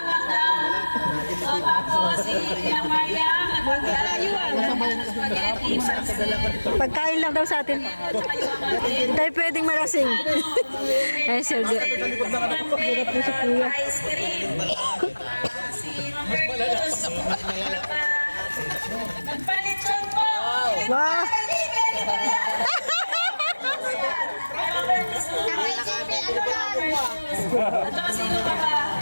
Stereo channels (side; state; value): both; inverted; correlation -1.00